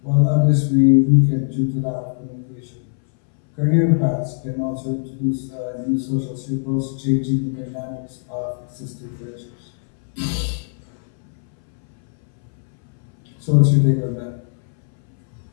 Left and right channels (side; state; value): right; silent; 63 dB below the other